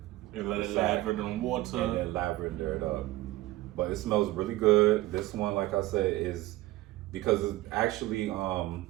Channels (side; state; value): left; quieter; 17.6 dB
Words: And let it lather in water. And then lavender it up. But it smells really good. This one, like I said, is because it's actually